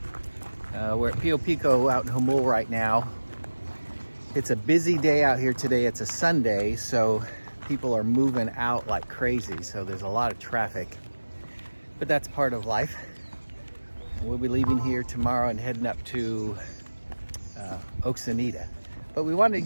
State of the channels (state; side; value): inverted; both; correlation -1.00